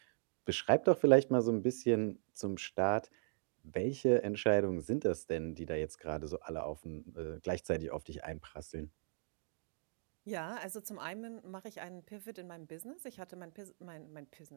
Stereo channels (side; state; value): left; silent; digital silence